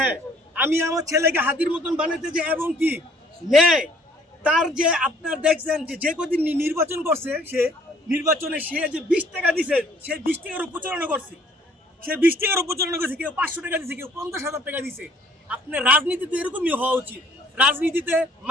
আমি আমার ছেলেকে হাদির মতন বানাতে যে এবং কি নেয় তার যে আপনার দেখছেন যে কদিন নির্বাচন করছে, সে নির্বাচনে সে যে 20 টাকা দিছে, সে 20 টাকার প্রচারণা করছে, সে 20 টাকার প্রচারণা করছে, কেউ 500 টাকা দিছে, কেউ 50,000 টাকা দিছে। আপনার রাজনীতিতে এরকমই হওয়া উচিত। রাজনীতিতে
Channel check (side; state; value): both; normal; correlation 0.59